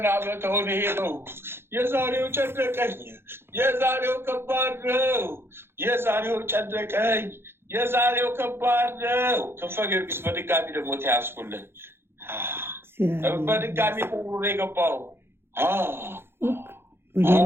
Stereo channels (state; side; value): late; left; 0.11 ms